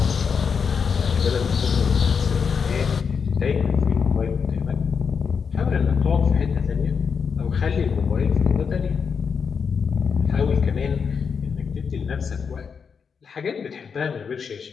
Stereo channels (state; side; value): quieter; right; 6.1 dB